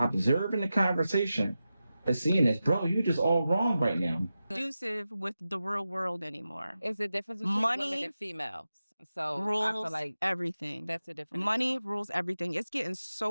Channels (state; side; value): inverted; both; correlation -0.92